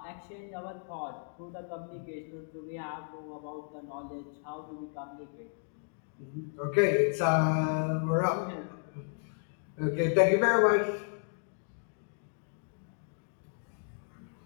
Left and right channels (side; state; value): right; silent; digital silence